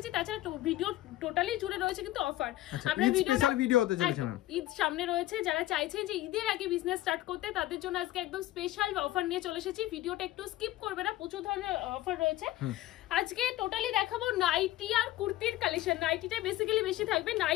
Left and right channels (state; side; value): quieter; right; 15.6 dB